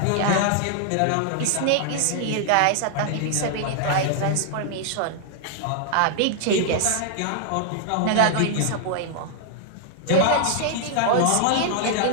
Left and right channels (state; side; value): different; both; correlation -0.01